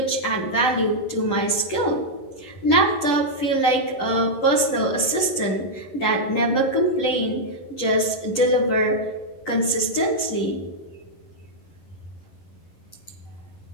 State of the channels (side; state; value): right; late; 10 ms